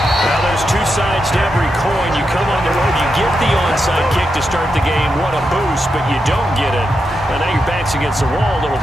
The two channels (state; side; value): normal; both; correlation 0.86